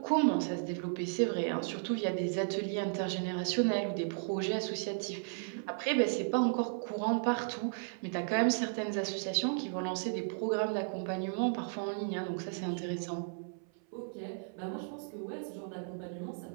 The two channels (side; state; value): left; silent; 55 dB below the other